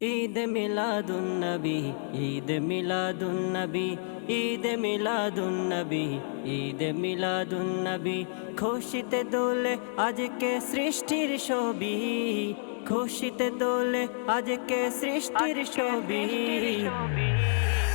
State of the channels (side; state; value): right; silent; digital silence